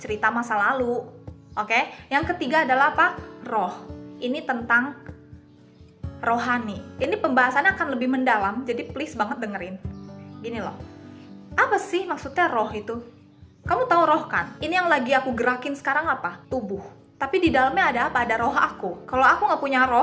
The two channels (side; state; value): both; identical; correlation 1.00